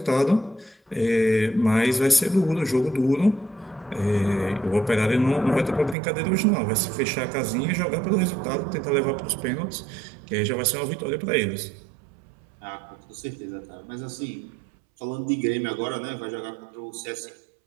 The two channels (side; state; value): left; drops out; at 6.0 s